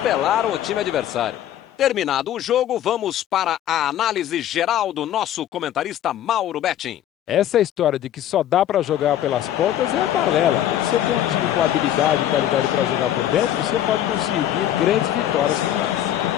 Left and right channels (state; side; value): quieter; right; 11.7 dB